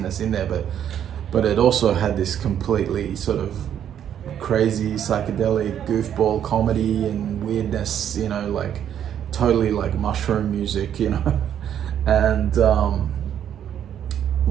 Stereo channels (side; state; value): left; quieter; 9.7 dB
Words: in there, but it also had this completely sort of crazy psychedelic goofball comedy and weirdness, like totally like mushroom music, and